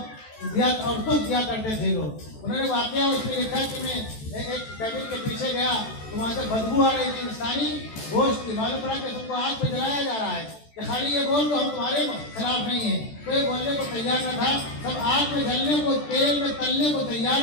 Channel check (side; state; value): right; late; 14 ms